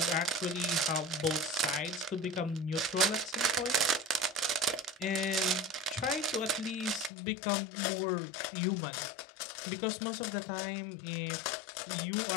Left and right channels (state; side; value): drops out; right; at 7.1 s